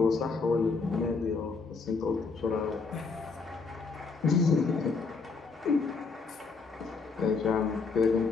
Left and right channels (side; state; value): right; quieter; 4.5 dB